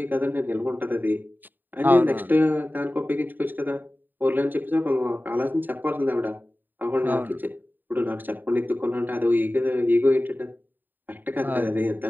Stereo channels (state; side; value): late; left; 0.090 ms